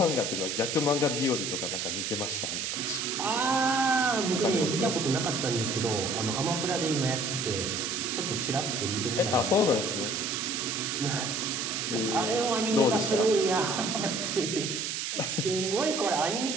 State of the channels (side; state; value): right; noise; hiss, 2 dB below the sound